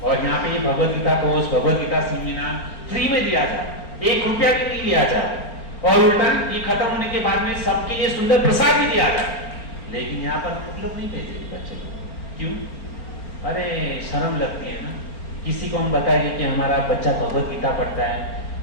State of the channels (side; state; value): right; late; 4.4 ms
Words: और यहाँ पे ये Bhagavad Gita course, Bhagavad Gita seminar free में दिया जाए, 1 रुपया भी नहीं लिया जाए, और उल्टा ये खत्म होने के बाद में सबके लिए सुंदर प्रसाद भी दिया जाए। लेकिन यहाँ पर हम लोग नहीं भेजे बच्चे को। क्यों? अरे शर्म लगती है ना। किसी को हम बताएंगे कि हमारा बच्चा भगवत गीता पढ़ता है,